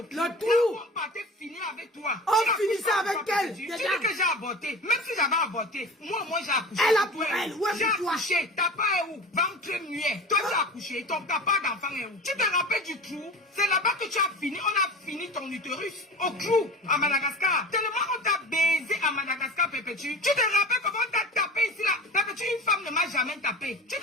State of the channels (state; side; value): normal; both; correlation 0.35